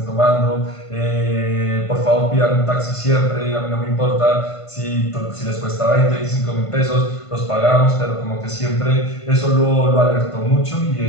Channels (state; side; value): late; right; 1.5 ms